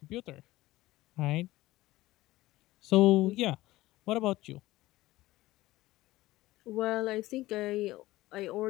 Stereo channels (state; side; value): quieter; right; 17.5 dB